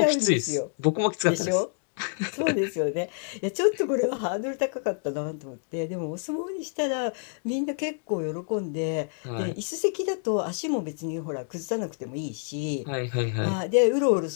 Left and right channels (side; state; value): right; silent; digital silence